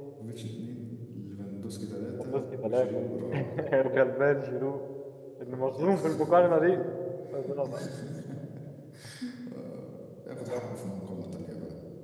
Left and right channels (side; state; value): both; identical; correlation 1.00